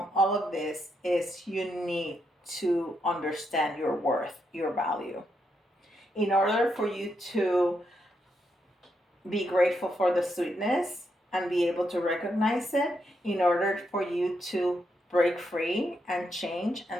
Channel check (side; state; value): both; normal; correlation 0.81